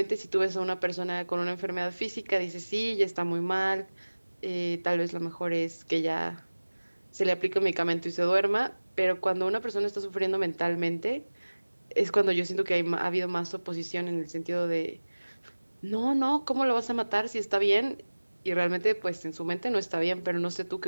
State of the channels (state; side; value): inverted; both; correlation -1.00